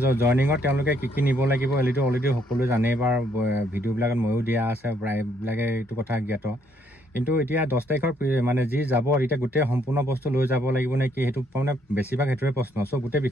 জইনিঙত তেওঁলোকে কি নিব লাগিব এইটো অলৰেডি সকলোৱে জানেই বা ভিডিঅ'বিলাকত ময়ো দিয়া আছে প্ৰায়বিলাকে এইটো কথা জ্ঞাত কিন্তু এতিয়া 10 তাৰিখৰ মানে যি যাব এতিয়া গোটেই সম্পূৰ্ণ বস্তু লৈ যাব লাগিব নে কি সেইটো মানে বেছিভাগ সেইটোৱে প্ৰশ্ন চ' গোটেই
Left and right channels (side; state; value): both; normal; correlation 0.69